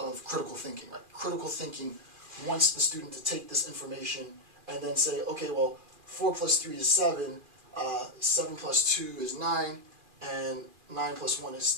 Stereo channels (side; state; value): left; late; 2.4 ms